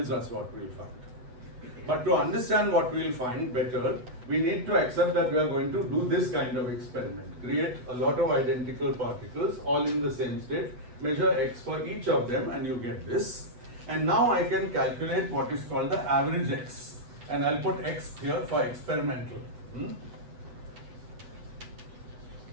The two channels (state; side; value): late; left; 8.1 ms